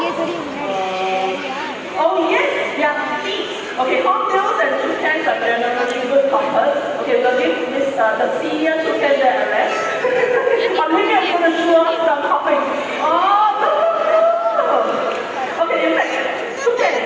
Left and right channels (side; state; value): both; identical; correlation 1.00